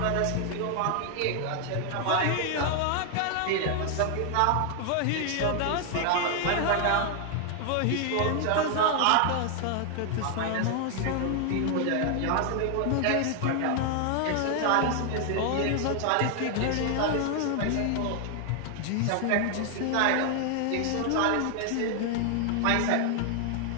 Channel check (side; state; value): both; different; correlation 0.00